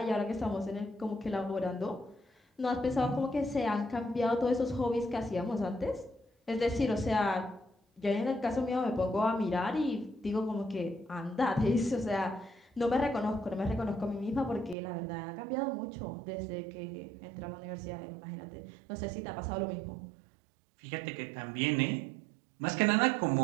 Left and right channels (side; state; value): left; drops out; at 14.8 s